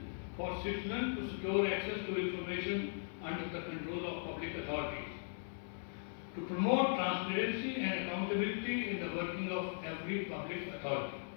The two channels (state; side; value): silent; right; 52 dB below the other